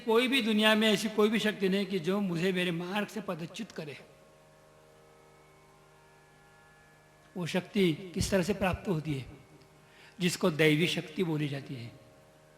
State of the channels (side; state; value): both; identical; correlation 1.00